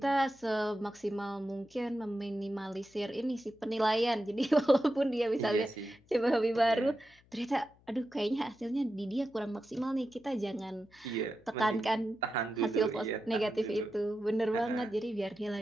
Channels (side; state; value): left; noise; hum, 30 dB below the sound